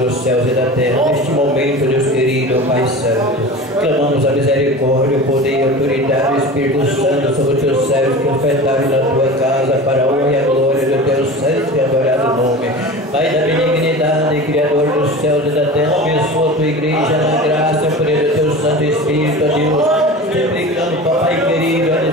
céus e da terra, neste momento, Deus querido, Pai Santo, clamamos a misericórdia, o poder e a autoridade do Espírito Santo sobre os teus servos que ofertaram na tua casa para a honra e a glória do teu santo e adorado nome. Pai da benignidade, Criador dos céus e da terra, abençoa a tua igreja na graça, por ele, o teu Santo Espírito, ó Deus. Suplicando, Pai querido, a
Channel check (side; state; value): both; normal; correlation 0.34